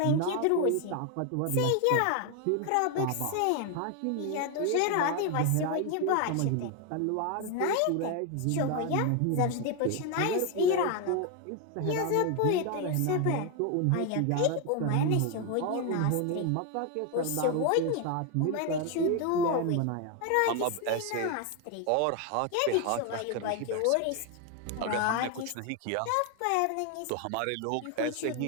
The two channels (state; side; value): different; both; correlation 0.01